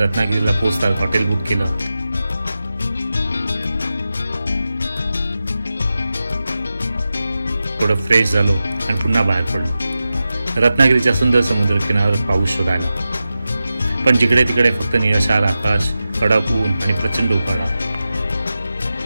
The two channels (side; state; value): both; inverted; correlation -0.93